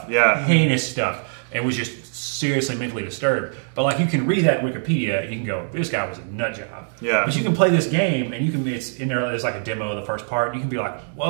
Yeah. Heinous stuff. And was just seriously mentally disturbed. But like you can read that in Wikipedia and you can go, this guy was a nut job. Yeah. But you can play this game and you can it's in there. There's like a demo of the first part. And you can be like,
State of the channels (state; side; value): silent; left; digital silence